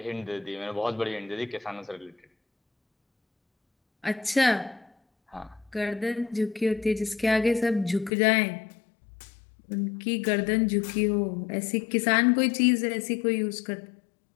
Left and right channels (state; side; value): drops out; right; at 8.1 s